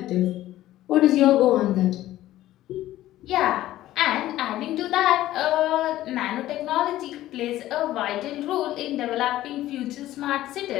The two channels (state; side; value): quieter; right; 14.6 dB